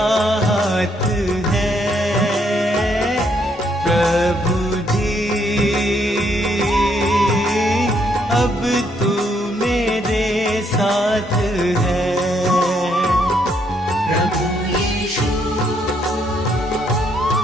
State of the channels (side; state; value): both; normal; correlation 0.72